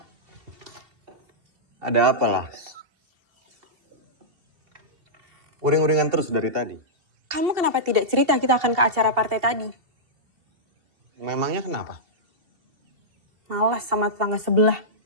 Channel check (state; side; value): late; left; 2.7 ms